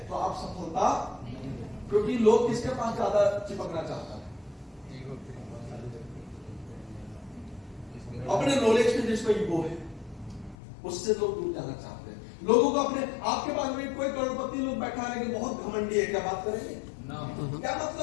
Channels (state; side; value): drops out; right; at 10.6 s